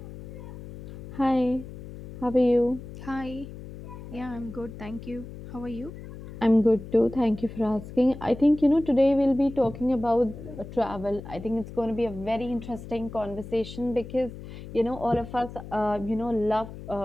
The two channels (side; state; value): left; noise; hum, 13 dB below the sound